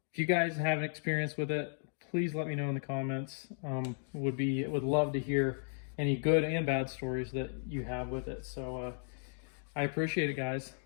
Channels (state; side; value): silent; right; digital silence